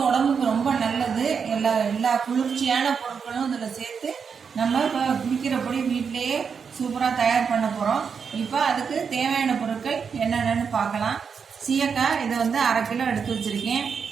உடம்புக்கு ரொம்ப நல்லது. எல்லா குளிர்ச்சியான பொருட்களும் இதில் சேர்த்து நம்ம இப்போ குளிக்கிற பொடி வீட்டிலேயே சூப்பராக தயார் பண்ண போகிறோம். இப்போ அதுக்கு தேவையான பொருட்கள் என்னென்னு பார்க்கலாம். சீயக்காய் இதை வந்து 1/2 கிலோ எடுத்து வச்சுருக்கேன்.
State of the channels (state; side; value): quieter; left; 6.2 dB